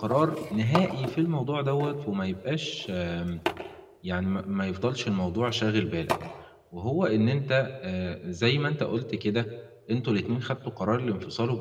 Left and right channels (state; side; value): identical; both; correlation 1.00